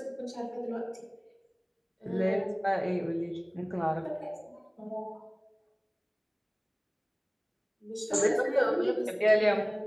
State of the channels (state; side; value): identical; both; correlation 1.00